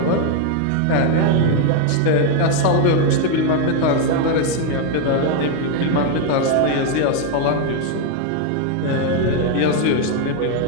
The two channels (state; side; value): different; both; correlation 0.01